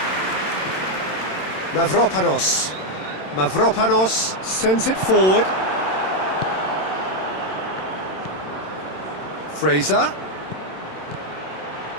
Mavropanos sends it forward. Fraser.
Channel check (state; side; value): late; right; 27 ms